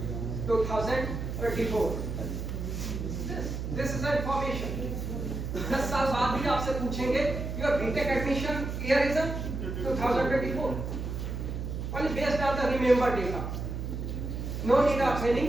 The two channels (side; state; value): right; noise; hum, 4 dB below the sound